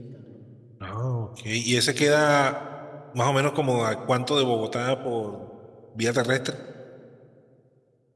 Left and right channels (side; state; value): both; identical; correlation 1.00